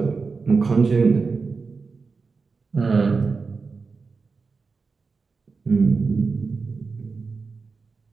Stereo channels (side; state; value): left; quieter; 4.6 dB